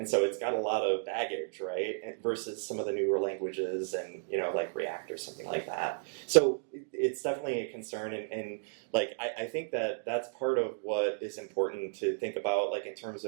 so it's got a lot of baggage, right? Versus some of the newer languages and like React or something like that. So it's definitely a concern, and like I think that that's part of what is important to think about, like in terms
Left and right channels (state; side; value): silent; left; digital silence